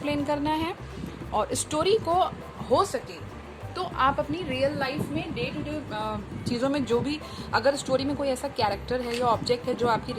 करना है। और स्टोरी को हो सके तो आप अपनी रियल लाइफ में डे टू डे चीज़ों में जो भी, अगर स्टोरी में कोई ऐसा कैरेक्टर है या ऑब्जेक्ट है जो आपकी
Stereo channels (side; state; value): both; identical; correlation 1.00